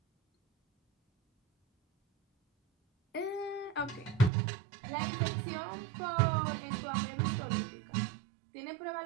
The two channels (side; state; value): left; drops out; at 4.3 s